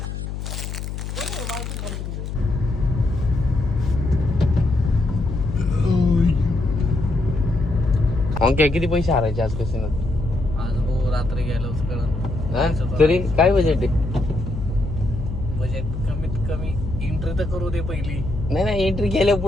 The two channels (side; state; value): left; noise; hum, 6 dB below the sound